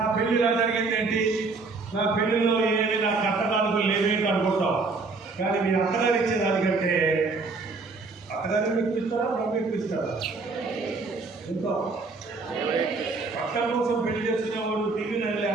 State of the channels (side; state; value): left; quieter; 4.0 dB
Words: పెళ్లి ఇలా జరిగింది, ఏంటి నా పెళ్లిలో ఏమి నా కట్టడాలకు లేవేంటి అనుకుంటాం. కానీ మీ అత్తగారు ఇచ్చేదానికంటే అత్తగారిని మెప్పిస్తారా, మనం మెప్పిస్తారా? ఇంకా అక్క కోసం పెళ్లి చేసుకునే వాళ్ళు టీవీని వెళ్ళి